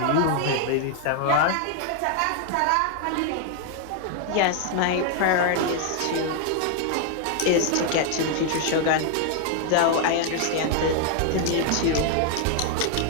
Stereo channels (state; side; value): different; both; correlation 0.00